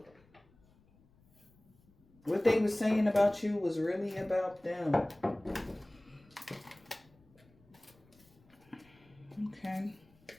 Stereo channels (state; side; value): noise; left; rumble, 30 dB below the sound